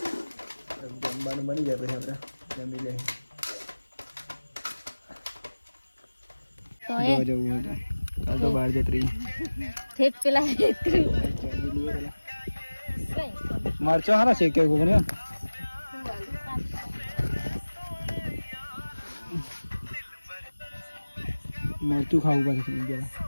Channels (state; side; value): inverted; both; correlation -1.00